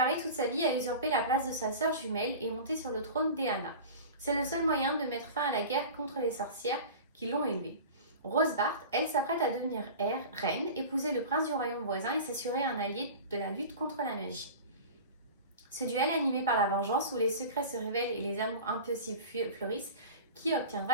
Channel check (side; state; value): both; inverted; correlation -0.34